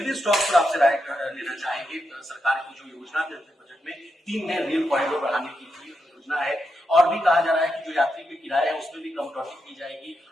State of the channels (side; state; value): both; normal; correlation 0.85